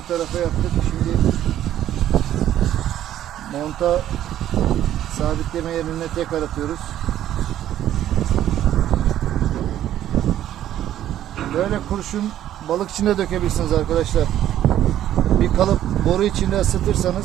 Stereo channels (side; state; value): left; quieter; 11.9 dB